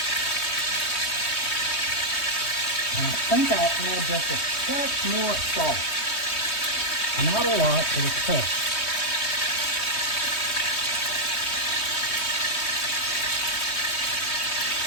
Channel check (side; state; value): right; late; 3.2 ms